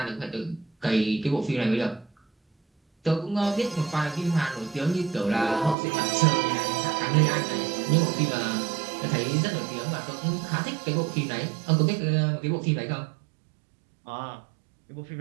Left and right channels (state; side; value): drops out; left; at 5.8 s